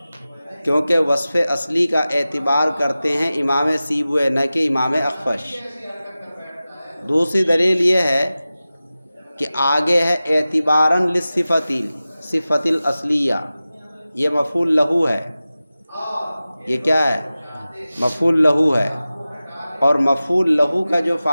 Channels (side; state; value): both; inverted; correlation -0.96